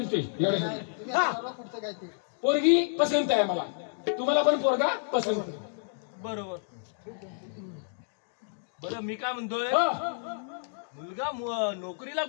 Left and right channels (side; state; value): right; silent; digital silence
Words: ते एवढे तुम्ही हा आता पुढचं काय ते पोरगी पसंत आहे मला तुम्हाला पण पोरगा पसंत आहे. बरोबर बरं मी काय म्हणतोय हा. मुलगा नोकरीला